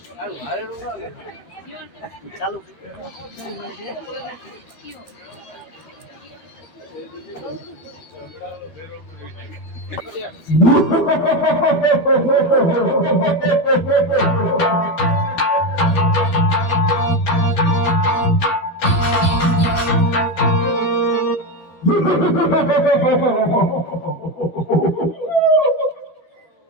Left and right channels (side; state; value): right; late; 13 ms